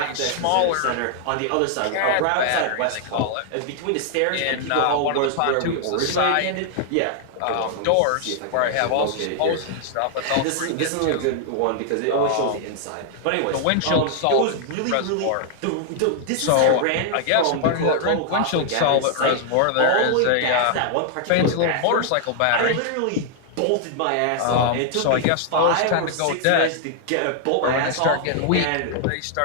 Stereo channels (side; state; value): both; different; correlation 0.00